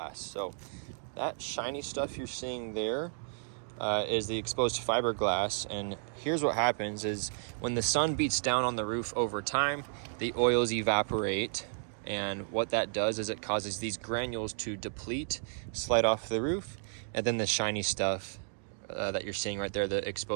So that shiny stuff you're seeing there is the exposed fiberglass, and here's what happens is when the sun beats down on the roof over time, the oils evaporate, and what that does is it causes these granules to deplete, slide off the roof, and then the shiny stuff that you're seeing right there, the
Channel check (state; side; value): silent; left; digital silence